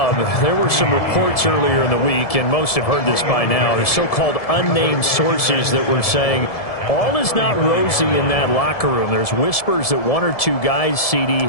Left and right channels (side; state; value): right; late; 1.7 ms